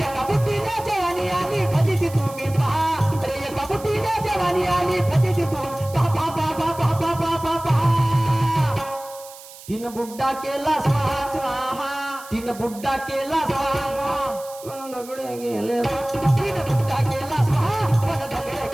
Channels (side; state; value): right; noise; hiss, 18 dB below the sound